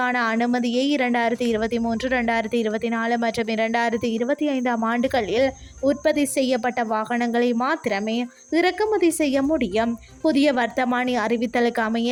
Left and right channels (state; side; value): identical; both; correlation 1.00